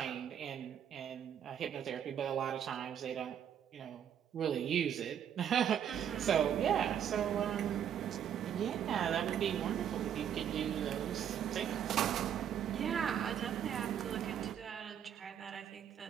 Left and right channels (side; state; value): left; quieter; 9.2 dB